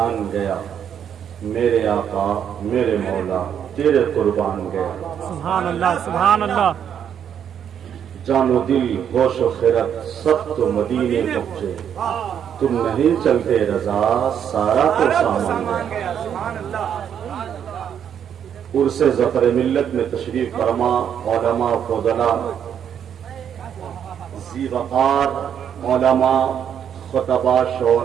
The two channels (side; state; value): left; quieter; 8.7 dB